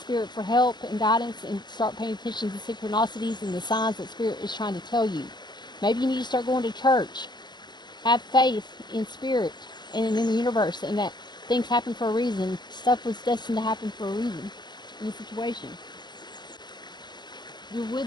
for help and guidance, and start paying attention to the synchronicities and the signs that Spirit is trying to tell you. Maybe you need to start going to church. Have faith in Spirit and in the universe, and that things happen for a reason. Stuff was destined to happen for a reason in the situation. Your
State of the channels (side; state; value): right; late; 0.21 ms